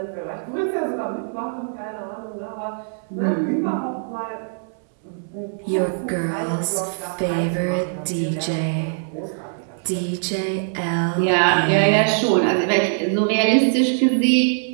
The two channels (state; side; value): silent; left; 64 dB below the other